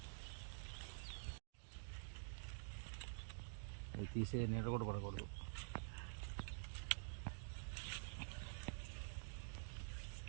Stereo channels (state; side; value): silent; left; digital silence